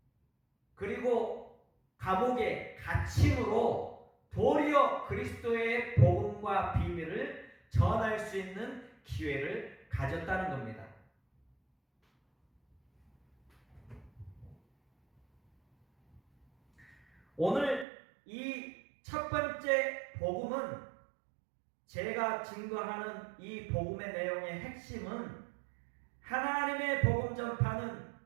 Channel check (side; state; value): left; drops out; at 17.9 s